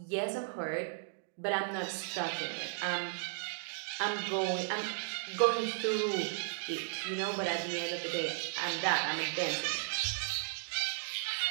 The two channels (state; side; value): silent; left; digital silence